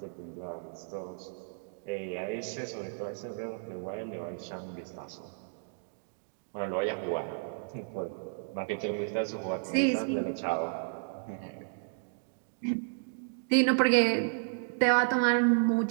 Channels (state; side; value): silent; left; digital silence